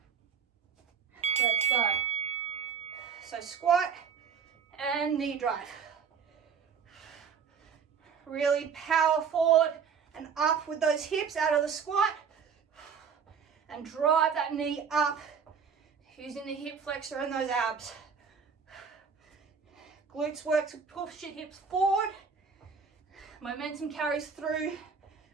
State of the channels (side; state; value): left; quieter; 6.4 dB